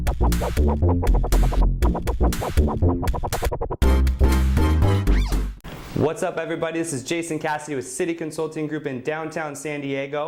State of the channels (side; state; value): both; identical; correlation 1.00